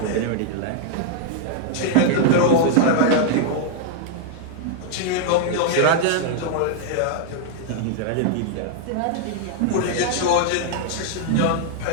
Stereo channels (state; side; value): different; both; correlation -0.01